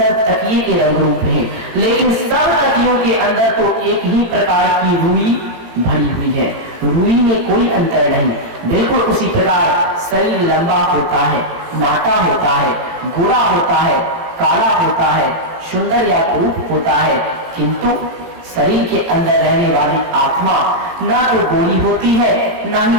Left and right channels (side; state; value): left; late; 18 ms